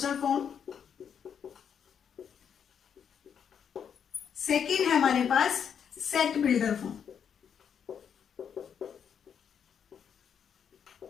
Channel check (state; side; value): quieter; right; 7.8 dB